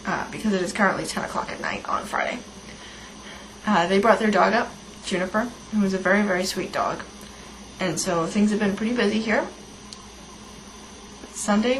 because it is currently 10 o'clock at night on Friday. They brought their dog up, Juniper, who is a very, very sweet dog. And so things have been pretty busy here.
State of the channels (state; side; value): identical; both; correlation 1.00